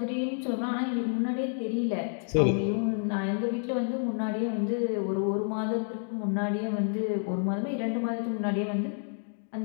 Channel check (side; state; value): right; silent; 58 dB below the other